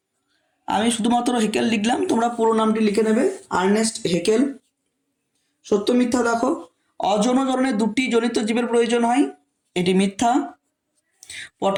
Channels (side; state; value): both; identical; correlation 1.00